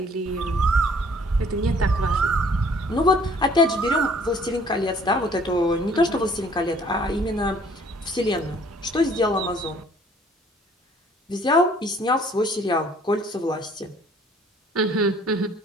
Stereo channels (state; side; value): normal; both; correlation 0.57